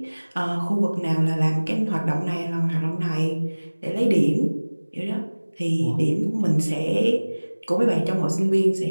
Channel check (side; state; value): both; inverted; correlation -1.00